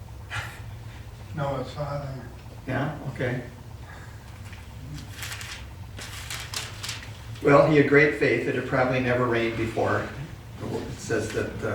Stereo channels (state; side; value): identical; both; correlation 1.00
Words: Noah's father. Yeah, okay. Well, he had great faith. It had probably never rained before. It says that